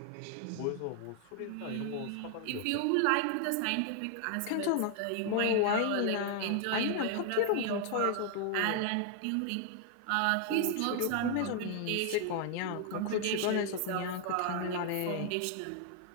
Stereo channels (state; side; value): different; both; correlation 0.00